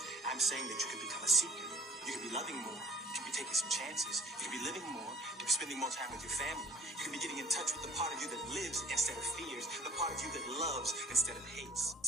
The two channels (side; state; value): both; normal; correlation 0.51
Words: I'm saying that you can become a seeker. You can be loving more. You can be taking some chances. You can be living more. You can be spending more time with your family. You can be getting in touch with the part of you that lives instead of fears, the part of you that loves instead of hates.